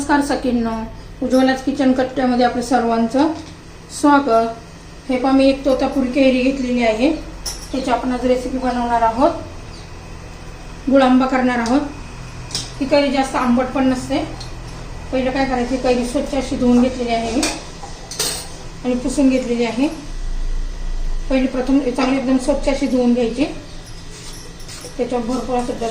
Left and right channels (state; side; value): identical; both; correlation 1.00